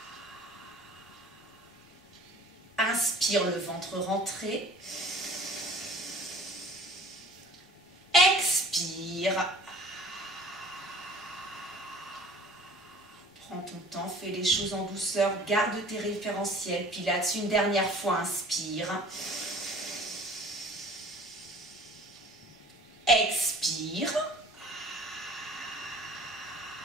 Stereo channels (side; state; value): both; normal; correlation 0.48